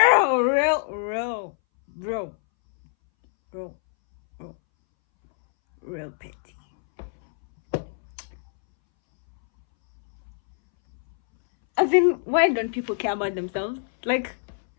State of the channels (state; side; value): silent; right; 61 dB below the other